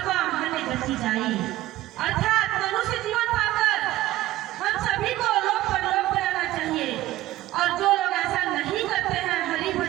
हन गति जाई। अर्थात मनुष्य जीवन पाकर हम सभी को लोक परलोक में रहना चाहिए। और जो लोग ऐसा नहीं करते हैं, हरि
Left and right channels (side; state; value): left; quieter; 16.0 dB